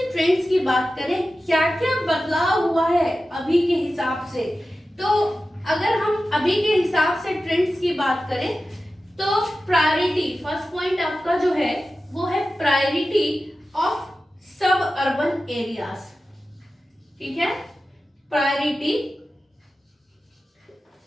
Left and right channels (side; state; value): both; normal; correlation 0.94